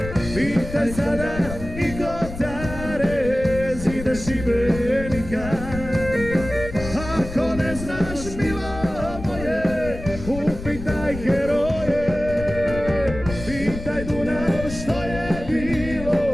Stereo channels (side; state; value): left; noise; rumble, 10 dB below the sound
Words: Pitaj sada i Kotare, zide Šibenika. Ako ne znaš milo moje, upitaj heroje. Pitaj Dunav što je bilo